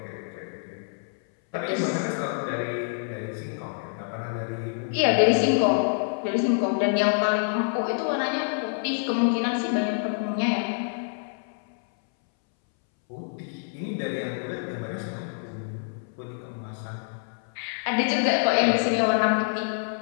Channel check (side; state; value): right; silent; 60 dB below the other